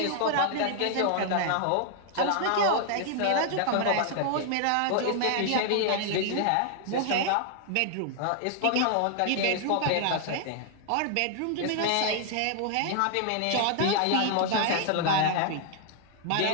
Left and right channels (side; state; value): both; different; correlation 0.00